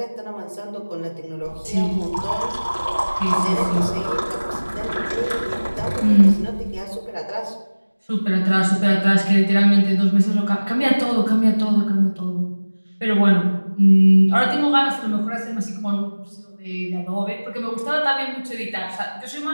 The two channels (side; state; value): both; inverted; correlation -1.00